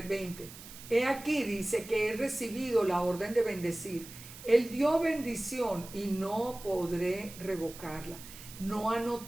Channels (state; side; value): noise; right; hiss, 15 dB below the sound